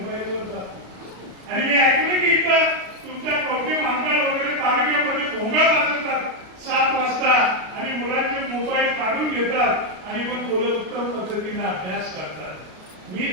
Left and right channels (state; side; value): late; left; 33 ms